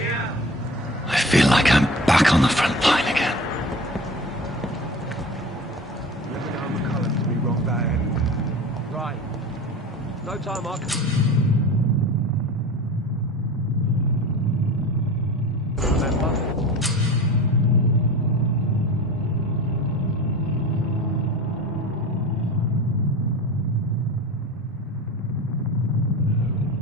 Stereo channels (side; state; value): both; normal; correlation 0.34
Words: I feel like I'm back on the front line again. Right. No time, Mark. Remember?